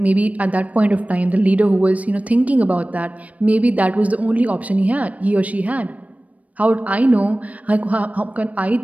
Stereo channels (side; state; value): left; late; 0.068 ms